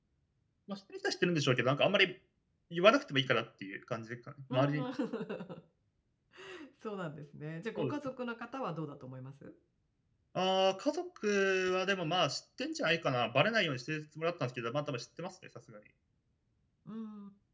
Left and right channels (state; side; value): identical; both; correlation 1.00